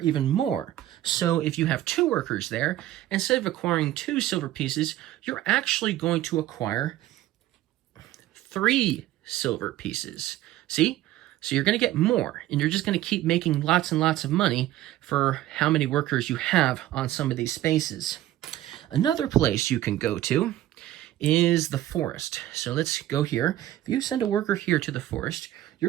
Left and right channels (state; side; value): quieter; left; 14.2 dB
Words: more. So if you have 2 workers there, instead of acquiring 2 silver pieces, you're actually going to acquire 3 silver pieces. See? So you're going to get more, and you're just going to keep making lots and lots of money for how many workers you have on some of these spaces. Another place you can go to is the forest. So let's go here. If you send a worker here to the forest,